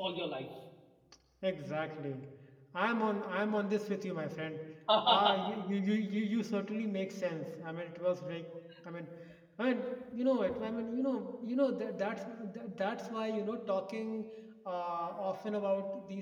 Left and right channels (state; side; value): identical; both; correlation 1.00